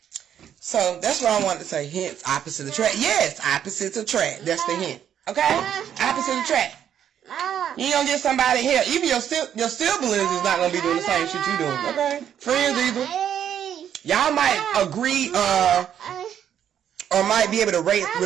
So that's what I wanted to say. Hint, opposite attract. Yes, opposites attract. That's the hint. Okay? Opposite attract. You ain't gonna get somebody here. Even your siblings is not gonna be doing the same shit you doing. Okay? Friends either. Y'all might agree or might be able to relate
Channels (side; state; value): left; quieter; 9.5 dB